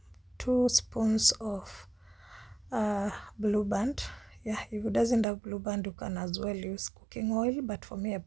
2 spoons of blue band. Yeah, if it doesn't have blue band, you can as well use cooking oil, but for me I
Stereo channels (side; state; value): left; drops out; at 5.2 s